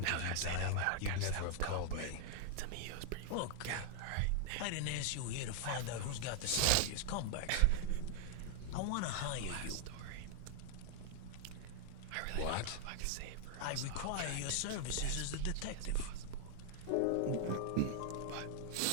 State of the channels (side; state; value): both; different; correlation -0.01